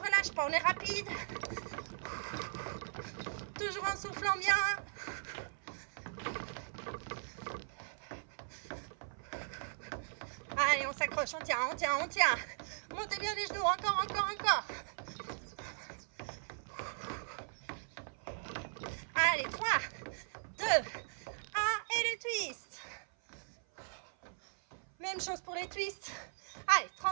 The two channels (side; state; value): left; silent; 52 dB below the other